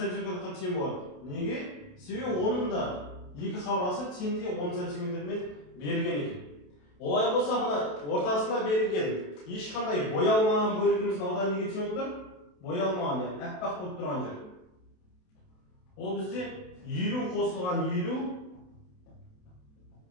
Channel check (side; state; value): right; late; 28 ms